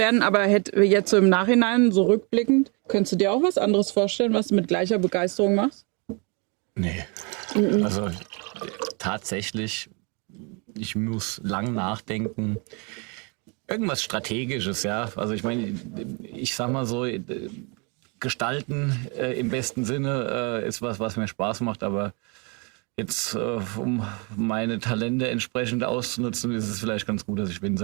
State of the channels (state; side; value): quieter; left; 33.1 dB